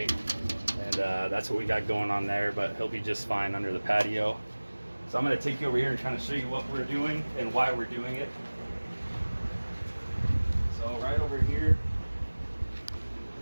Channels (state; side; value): inverted; both; correlation -1.00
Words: and that's what we got going on there, but he'll be just fine under the patio. So I'm going to take you over here and kind of show you what we're doing and why we're doing it. So right over here,